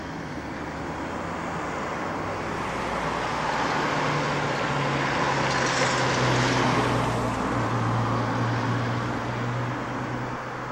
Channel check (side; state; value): both; identical; correlation 1.00